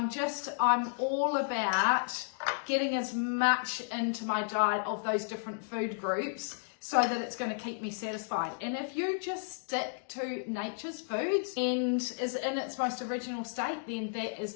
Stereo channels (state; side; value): silent; right; digital silence